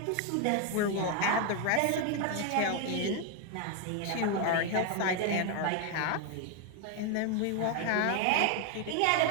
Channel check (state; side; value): different; both; correlation 0.01